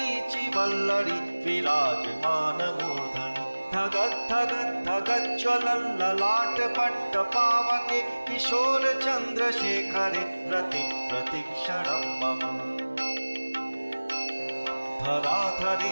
वल्लरी विराजमानमूर्धनि धगद्धगद्धगज्ज्वलल्ललाटपट्टपावके किशोरचन्द्रशेखरे रति प्रतिक्षणं मम।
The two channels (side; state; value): both; inverted; correlation -1.00